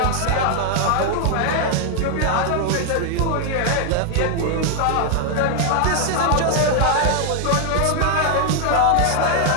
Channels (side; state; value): both; different; correlation 0.00